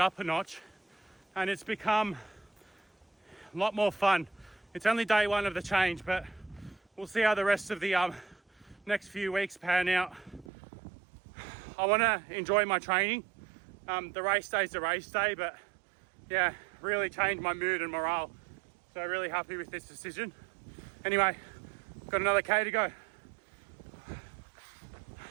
up a notch and it's become a lot more fun. It's only day 1 of the change, but we'll see how the rest of the next few weeks pan out. I want to enjoy my training. The race day's a race day, but yeah, really changed my mood and morale. So really happy with this decision. Anyway, got another K to go.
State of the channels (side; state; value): left; drops out; at 10.5 s